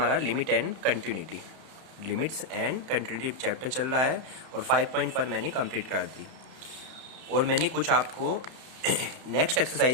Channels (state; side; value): late; left; 31 ms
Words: limit and continuity, limits and continuity chapter चल रहा है और 5.1 मैंने कंप्लीट कर दी। और मैंने कुछ आपको नेक्स्ट